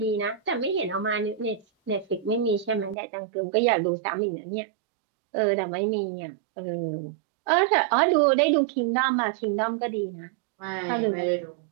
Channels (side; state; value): left; drops out; at 3.0 s